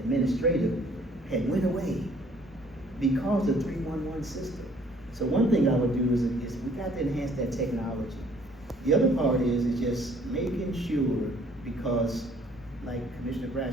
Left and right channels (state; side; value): normal; both; correlation 0.59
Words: had went away because of the 311 system. So one thing I would do is we got to enhance that technology. The other part is just making sure, because like Commissioner